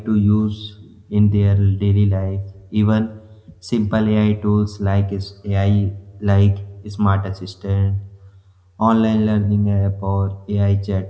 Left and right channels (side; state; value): both; identical; correlation 1.00